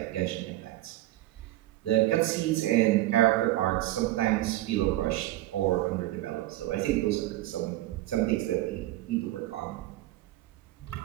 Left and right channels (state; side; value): quieter; left; 16.0 dB